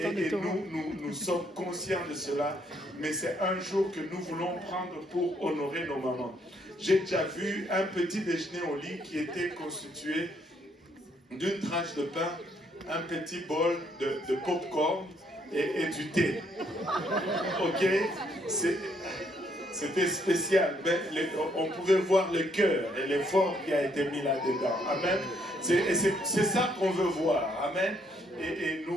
nous sommes conscients de cela. Mais c'est un jour que nous voulons prendre pour honorer nos mamans. J'ai déjà vu un petit déjeuner au lit qui était constitué d'une tranche de pain, un petit bol de popcorn et du thé. Ok? C'était spécial. Mais on pouvait voir le cœur et l'effort qui a été mis là-dedans. Amen. C'est ça qu'on veut voir. Amen. Et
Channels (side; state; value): both; normal; correlation 0.70